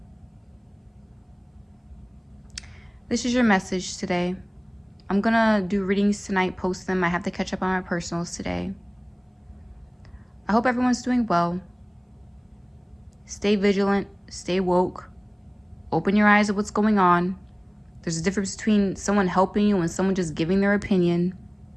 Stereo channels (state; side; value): identical; both; correlation 1.00